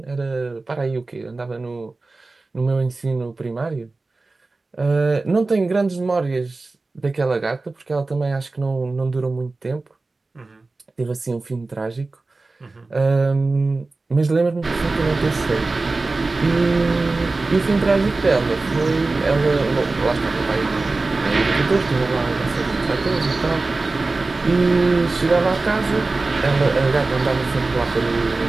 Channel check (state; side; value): quieter; left; 3.5 dB